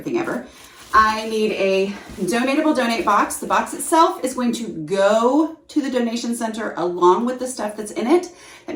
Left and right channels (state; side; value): identical; both; correlation 1.00